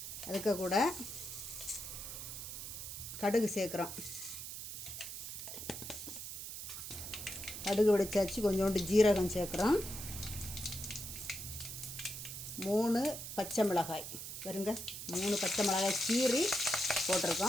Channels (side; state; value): right; noise; hiss, 8 dB below the sound